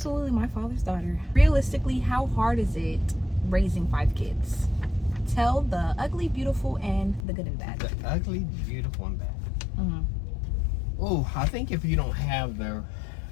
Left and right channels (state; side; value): drops out; right; at 7.2 s